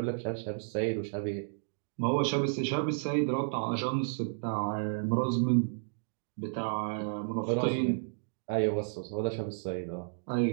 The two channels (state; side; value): silent; left; digital silence